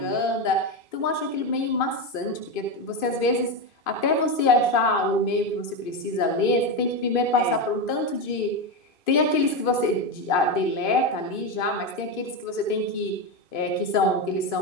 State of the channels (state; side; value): late; right; 2.5 ms